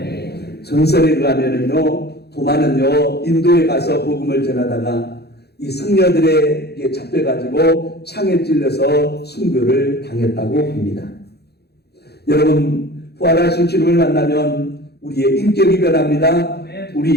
전설에 의하면은요 도마는요 인도에 가서 복음을 전하다가 이 승려들에게 잡혀가지고 창에 찔려서 순교를 당했다고 합니다. 여러분 부활하신 주님을 만나면 우리의 인격이 변합니다.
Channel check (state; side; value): late; right; 0.48 ms